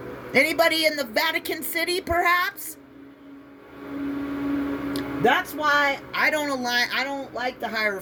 Anybody in the Vatican City, perhaps? That's why I don't like the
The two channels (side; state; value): both; identical; correlation 1.00